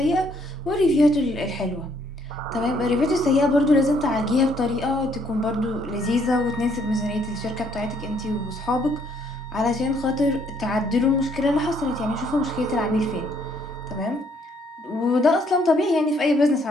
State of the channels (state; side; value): normal; both; correlation 0.67